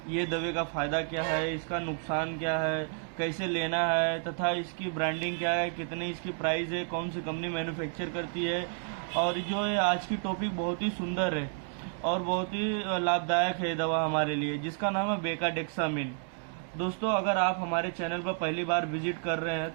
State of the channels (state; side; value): silent; left; 57 dB below the other